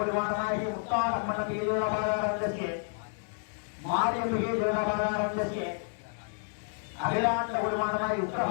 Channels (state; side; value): silent; right; 58 dB below the other